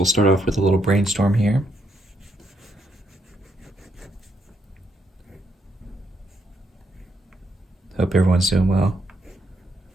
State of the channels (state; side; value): normal; both; correlation 0.76